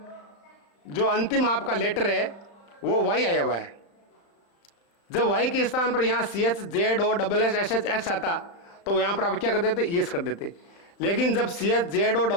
जो अंतिम आपका लेटर है वो वाई आया हुआ है। जब वाई के स्थान पर यहाँ C H Z O double S S H X आता, तो यहाँ पर आप क्या कर देते, यस कर देते। लेकिन जब C H Z O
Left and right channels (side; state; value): right; late; 35 ms